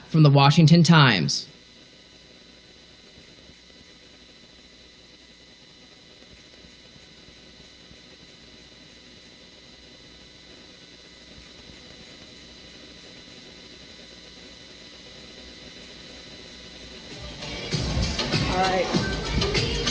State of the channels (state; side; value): identical; both; correlation 1.00